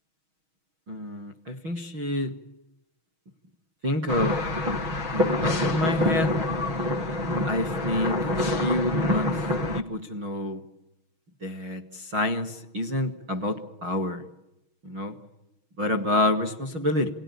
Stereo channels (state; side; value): late; left; 6.3 ms